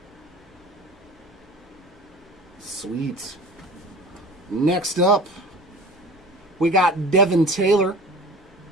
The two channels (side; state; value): both; normal; correlation 0.40